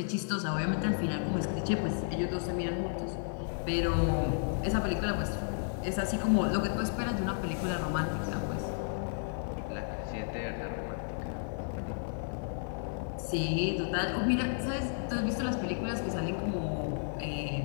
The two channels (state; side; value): silent; right; digital silence